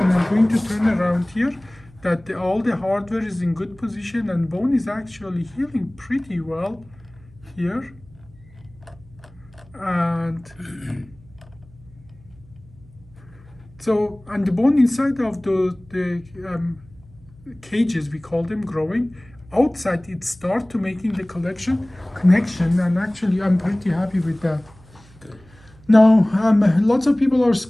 and I'm going to turn around here, that all the hardware is in good position, and bone is actually healing pretty well here. And so, and the bone inside of the cages, we call them, growing, outside it start to making the connection, and actually I'm pretty happy with that. Now, lots of people are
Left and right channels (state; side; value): noise; right; hum, 25 dB below the sound